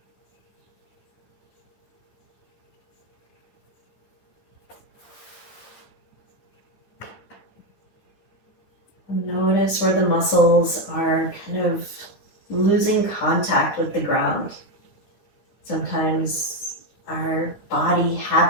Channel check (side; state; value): right; late; 9.7 ms